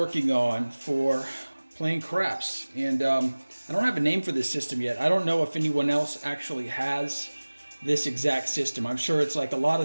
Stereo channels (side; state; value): both; inverted; correlation -1.00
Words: on for playing craps. And I don't have a name for this system yet. I don't know if anyone else actually has this exact system. I'm sure it's like a lot